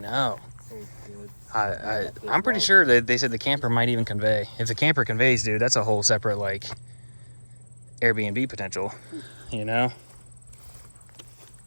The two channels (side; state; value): both; inverted; correlation -1.00